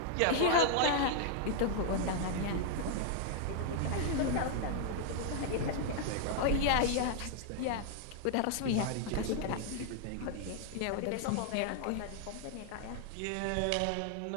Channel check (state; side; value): different; both; correlation 0.00